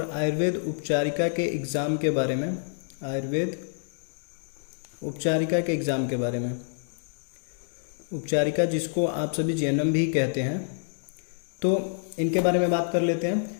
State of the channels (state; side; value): silent; right; 60 dB below the other